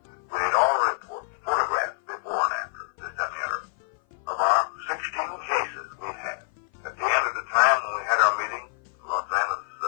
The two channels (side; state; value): right; silent; 56 dB below the other